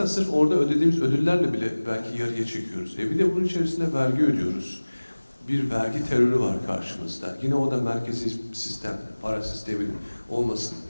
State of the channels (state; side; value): inverted; both; correlation -1.00